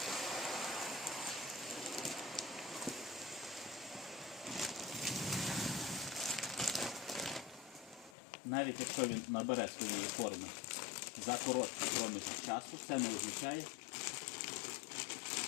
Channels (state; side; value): drops out; right; at 8.2 s